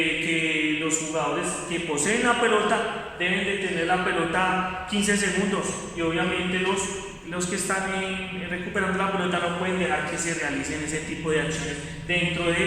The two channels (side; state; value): both; identical; correlation 1.00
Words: los jugadores que poseen la pelota deben de tener la pelota 15 segundos y obviamente los que están recuperando la pelota no pueden dejar que se realicen ese tipo de acciones dentro